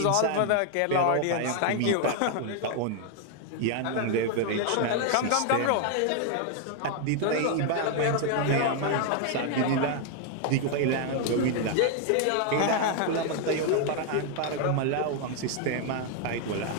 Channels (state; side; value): different; both; correlation 0.00